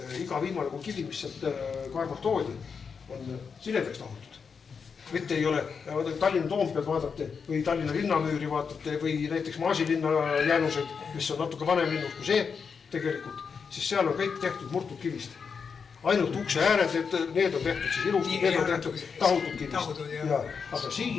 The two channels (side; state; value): right; quieter; 5.9 dB